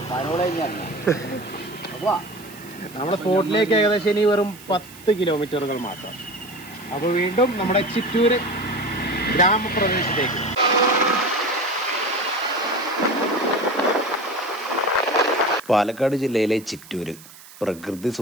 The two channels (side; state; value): right; noise; hiss, 20 dB below the sound